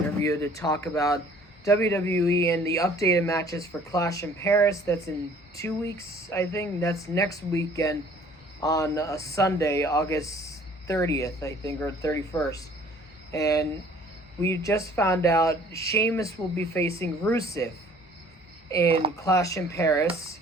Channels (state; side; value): normal; both; correlation 0.54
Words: to talk about WWE and the updated matches for Clash in Paris. That's in 2 weeks, I think. That's next weekend on a Sunday, August 30th, I think, or 31st. And we just found out Shamus will be facing Rusev in Clash in Paris,